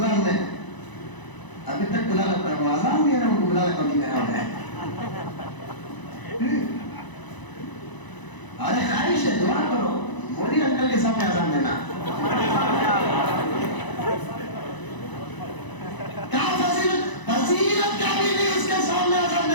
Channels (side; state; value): right; late; 1.0 ms